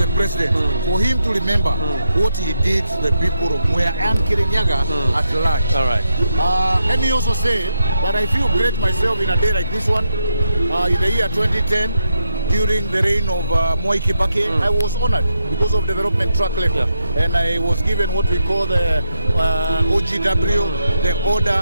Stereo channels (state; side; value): inverted; both; correlation -0.82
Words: president for him to remember what he did to the people of Mwea and Kirinyaga at large. All right. Let me also say that I feel great myself in a day like this one. In the year 2010, during the reign of Mwai Kibaki, I was honored because of development track record. And I was given what we call the OGW, the